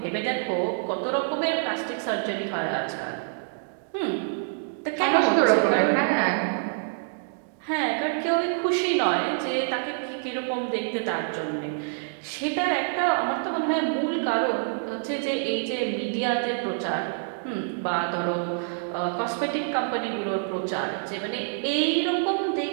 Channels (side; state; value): left; silent; digital silence